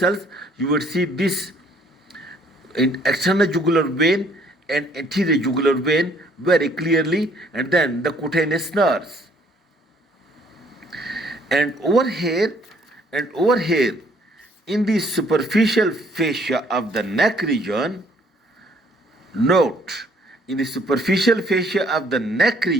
you will see this external jugular vein and anterior jugular vein very clearly, and then the cutaneous nerves. And over here in the superficial fascia of the neck region, note, in the superficial fascia of the neck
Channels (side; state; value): both; normal; correlation 0.62